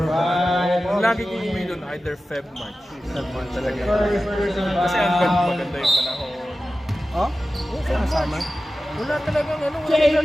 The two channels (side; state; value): both; normal; correlation 0.94